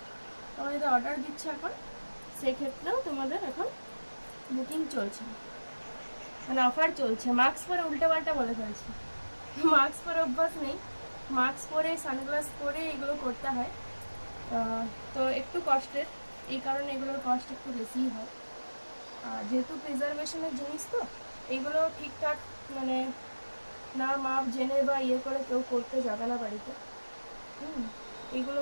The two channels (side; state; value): both; inverted; correlation -1.00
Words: তোমরা যদি অর্ডার দিচ্ছ এখন, সেক্ষেত্রেও তোমাদের এখন বুকিং চলছে, মানে অফার চলছে। মাস্ক পরে উল্টোপাল্টা বলে ফেলছি, মাস্ক পরে অভ্যাস নেই, মাস্ক পরে সানগ্লাস পরে এগুলো করতে হয়। তো একটু কষ্টের, এই কারণে এগুলোর কষ্ট একটু বেশিই হয়। আর যেহেতু প্রিজারভেশনের জিনিস, তো এগুলো ঠিকঠাক মানে না মাপ জেনে বা ইয়ে করে কেউ করতে যাবে না বাড়িতে। এগুলো